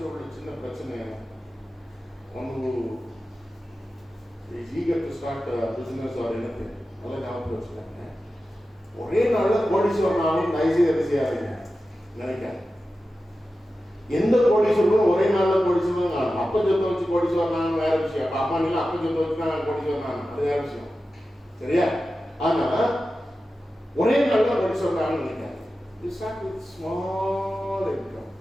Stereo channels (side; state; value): both; normal; correlation 0.93